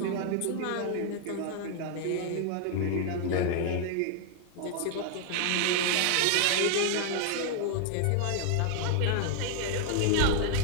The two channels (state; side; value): different; both; correlation 0.00